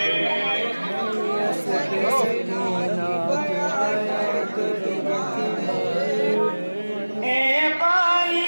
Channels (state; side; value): inverted; both; correlation -1.00